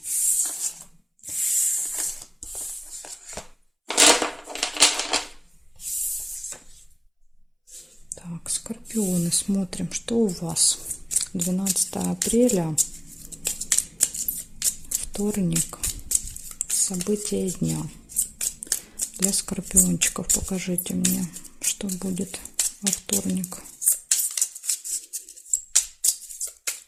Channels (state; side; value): identical; both; correlation 1.00